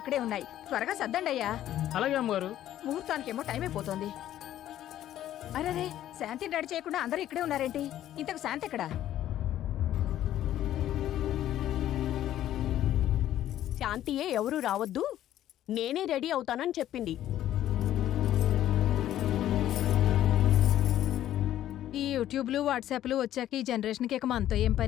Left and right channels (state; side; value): quieter; right; 12.4 dB